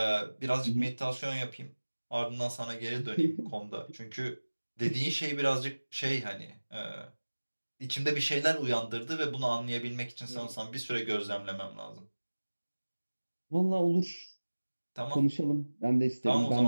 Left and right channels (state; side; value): inverted; both; correlation -1.00